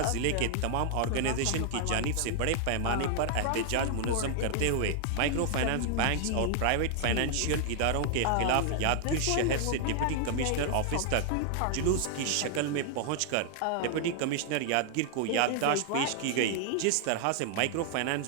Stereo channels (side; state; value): both; different; correlation 0.00